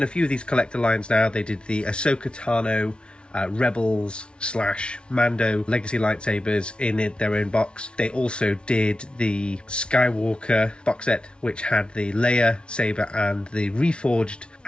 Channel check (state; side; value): late; right; 0.057 ms